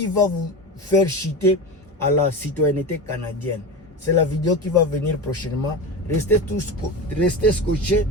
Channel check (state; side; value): normal; both; correlation 0.25